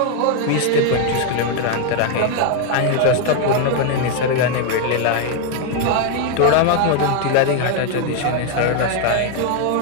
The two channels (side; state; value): both; different; correlation 0.01